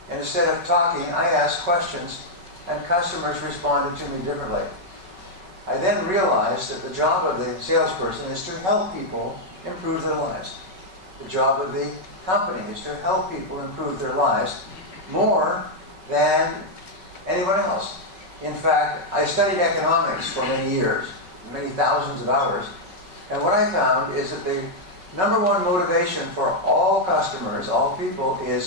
and instead of talking, I asked questions, and customers responded to me differently. I then realized that the job of the salesperson is to help people improve their lives. The job of the company is to help people improve their lives more than anyone else. In fact, I studied economics for many years, many thousands of hours, and what I found is that the number one motivation for all customers, all people,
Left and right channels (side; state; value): left; late; 5.3 ms